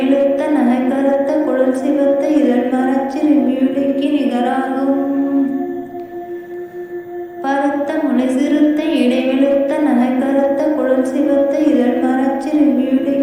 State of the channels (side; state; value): both; identical; correlation 1.00